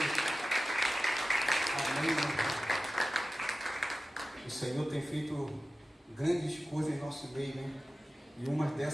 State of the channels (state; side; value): normal; both; correlation 0.95